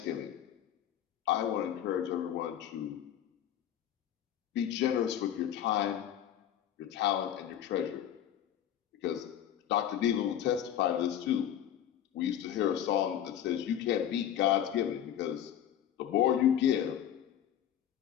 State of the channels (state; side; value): quieter; right; 10.5 dB